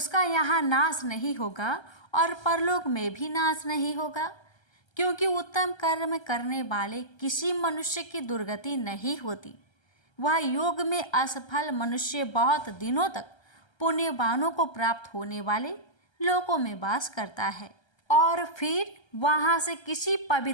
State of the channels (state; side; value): late; right; 1.3 ms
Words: यहाँ नाश नहीं होगा और परलोक में भी नाश नहीं होगा, क्योंकि उत्तम कर्म करने वाले किसी मनुष्य की दुर्गति नहीं होती। वह योग में असफल मनुष्य बहुत दिनों तक पुण्यवानों को प्राप्त होने वाले लोकों में वास करता है और फिर वहाँ से किसी